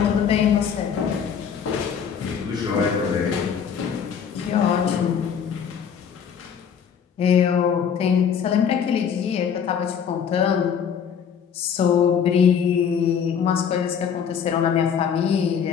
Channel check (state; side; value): quieter; right; 7.4 dB